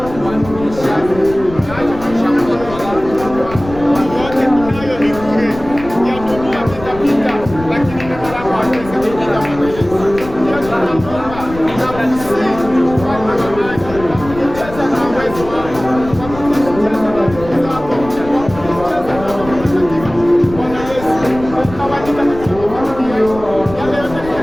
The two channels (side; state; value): left; noise; rumble, 13 dB below the sound